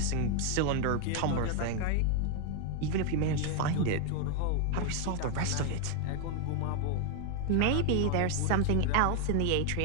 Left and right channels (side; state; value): both; different; correlation 0.00